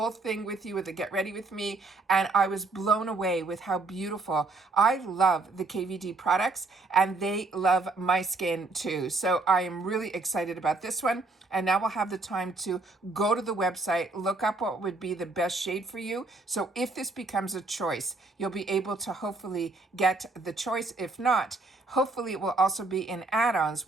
thing with you with the Get Ready With Me, and I was blown away with how beautiful. I love the KVD products, and they love my skin too. So I am really excited about this one. And now we'll have the time to go to the website, look up what would be the best shade for you. So if this becomes a choice, you'll be able to hopefully get the choice. If not, hopefully it will also be in add-ons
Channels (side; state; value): left; quieter; 3.4 dB